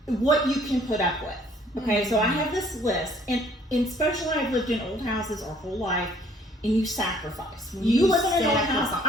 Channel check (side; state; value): both; normal; correlation 0.58